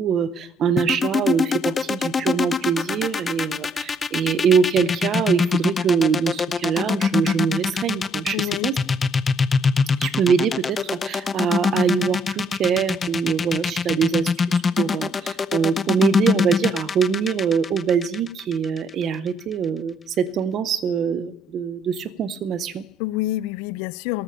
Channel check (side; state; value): both; normal; correlation 0.68